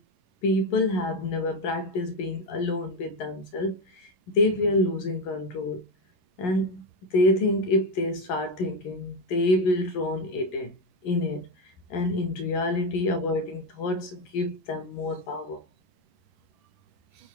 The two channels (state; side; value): late; right; 11 ms